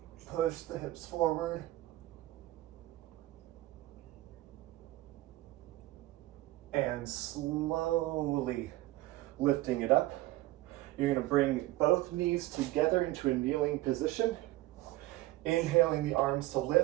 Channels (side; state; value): left; quieter; 17.6 dB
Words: Push the hips forward. And slowly lifting it up. You're gonna bring both knees together into a kneeling position. Inhaling the arms to